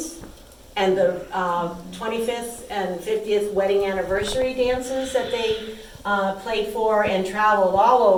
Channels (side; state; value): both; identical; correlation 1.00